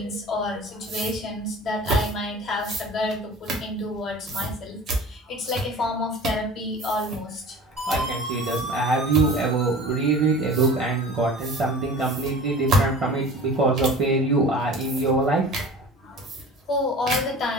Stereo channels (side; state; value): both; normal; correlation 0.39